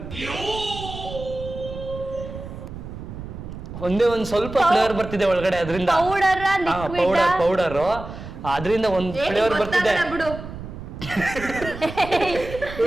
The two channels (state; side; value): noise; right; rumble, 11 dB below the sound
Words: ಒಂದೇ ಒಂದು ಸ್ವಲ್ಪ ಫ್ಲೇವರ್ ಬರ್ತಿದೆ ಒಳಗಡೆ ಅದರಿಂದ. ಪೌಡರ್ ಪೌಡರ್ ಅದರಿಂದ ಒಂದು ಫ್ಲೇವರ್ ಬರ್ತಿದೆ. ಬಿಡು.